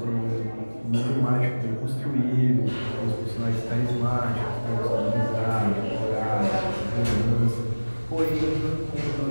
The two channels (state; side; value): inverted; both; correlation -1.00